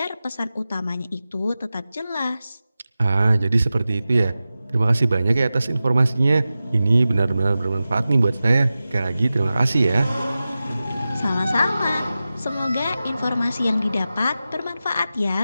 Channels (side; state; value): both; inverted; correlation -0.94